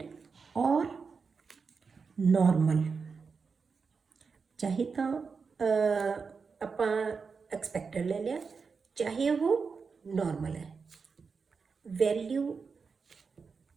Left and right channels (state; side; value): quieter; left; 5.2 dB